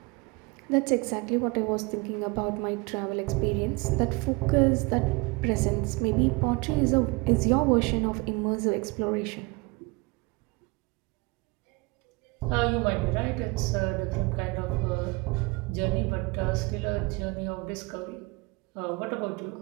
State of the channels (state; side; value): quieter; left; 25.9 dB